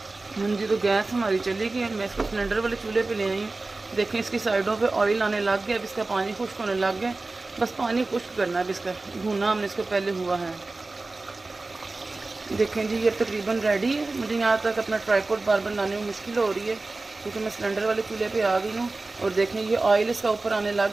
हाँ जी, तो गैस हमारी चली गई। मैं इसको सिलेंडर वाले चूल्हे पे ले आई हूँ। देखें इसकी साइडों पे ऑयल आने लग गया। अब इसका पानी खुश्क होने लग गया, बस पानी खुश्क करना है। अब इसका भुना हमने इसको पहले हुआ है। देखें जी, ये तकरीबन रेडी है। मुझे यहाँ तक अपना ट्राइपॉड बार बनाने में मुश्किल हो रही है क्योंकि मैं सिलेंडर वाले चूल्हे पे आ गई हूँ। और देखें ये ऑयल इसका ऊपर आने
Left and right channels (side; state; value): left; quieter; 3.4 dB